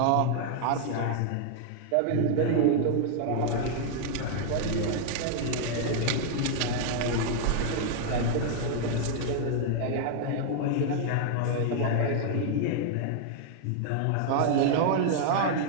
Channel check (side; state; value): both; different; correlation 0.00